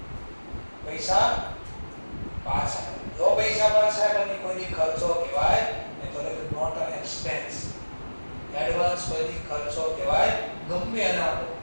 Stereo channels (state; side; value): inverted; both; correlation -1.00